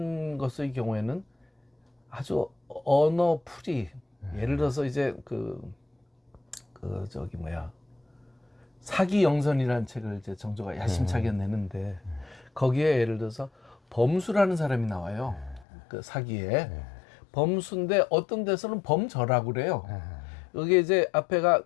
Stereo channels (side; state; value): right; drops out; at 15.7 s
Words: 것의 경우에는 아주 언어 풀이, 예를 들어서 이제 저기 뭐야, 사기영선이라는 책을 이제 정조가 야심차게 내는데 거기에 예를 들어서 범수라는 사람이 나와요. 그 사기에. 범수인데 어떤 데서는 범저라고 그래요. 여기 이제 앞에가